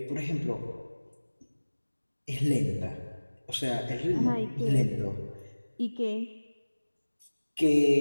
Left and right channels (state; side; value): inverted; both; correlation -1.00